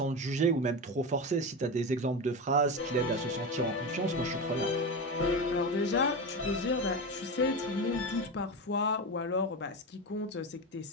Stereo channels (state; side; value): normal; both; correlation 0.20